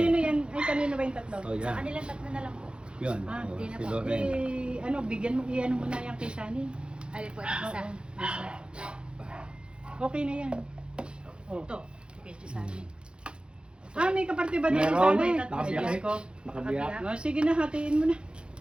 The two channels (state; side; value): late; left; 0.054 ms